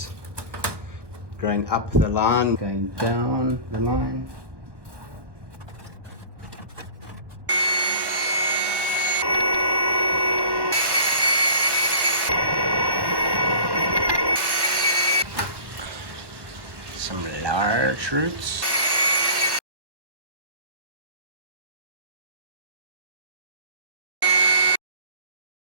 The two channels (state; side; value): late; left; 1.1 ms